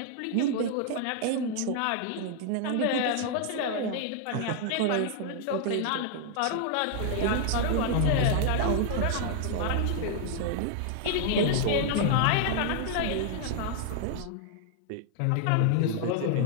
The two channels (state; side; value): different; both; correlation 0.00